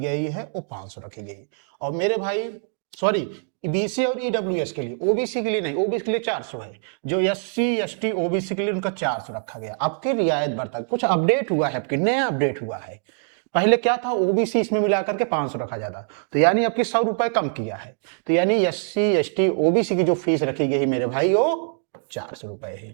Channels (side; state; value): left; silent; digital silence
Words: है वो 500 रखी गई। और मेरे भाई सॉरी, बीसी और ईडब्ल्यूएस के लिए, ओबीसी के लिए नहीं, ओबीसी के लिए 400 है। जो एससी एसटी ओबीसी के लिए उनका 400 रखा गया। आपके रियायत बढ़ता है, कुछ अपडेट हुआ है, आपके नया अपडेट हुआ है। पहले क्या था, ओबीसी इसमें मिलाकर के 500 रखा जाता, तो यानी आपकी 100 रुपए कम किया है। तो यानी एससी एसटी ओबीसी की जो फीस रखी गई मेरे भाई वो 400 रुपए है।